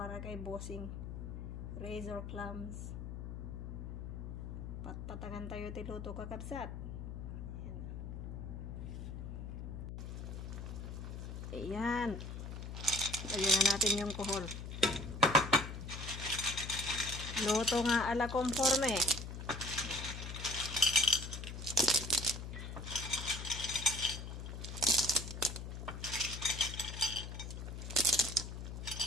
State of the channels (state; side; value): noise; left; hum, 7 dB below the sound